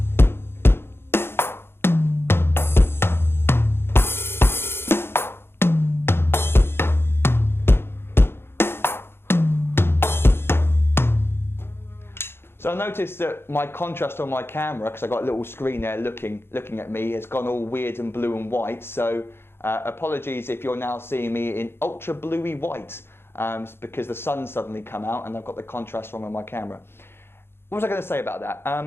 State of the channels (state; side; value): late; right; 0.11 ms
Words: So I noticed that my contrast on my camera, because I got a little screen there looking at me, has gone all weird and blue and white. So apologies if you're now seeing me in ultra bluey white. because the sun's suddenly come out and I've got the contrast wrong on my camera. What was I going to say about that?